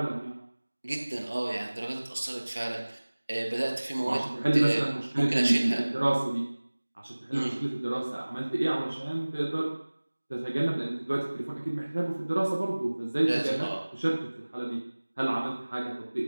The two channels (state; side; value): inverted; both; correlation -1.00